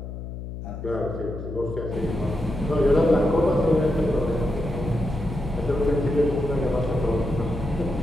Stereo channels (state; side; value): noise; left; hum, 9 dB below the sound